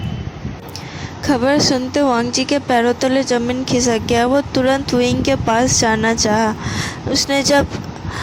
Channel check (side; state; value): both; identical; correlation 1.00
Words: खबर सुनते वांग जी के पैरों तले जमीन खिसक गया। वो तुरंत विंग के पास जाना चाहा। उसने जब